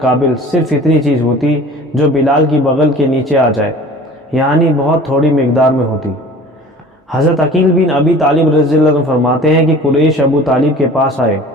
صرف اتنی چیز ہوتی جو بلال کی بغل کے نیچے آ جائے، یعنی بہت تھوڑی مقدار میں ہوتی۔ حضرت عقیل بن ابی طالب رضی اللہ عنہ فرماتے ہیں کہ قریش ابو طالب کے پاس آئے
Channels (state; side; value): normal; both; correlation 0.44